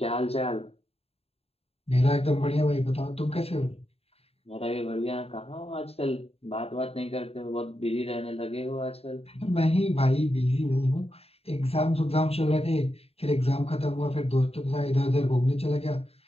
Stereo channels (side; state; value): right; late; 0.29 ms